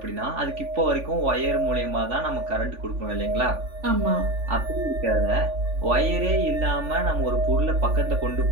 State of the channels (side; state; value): left; late; 3.5 ms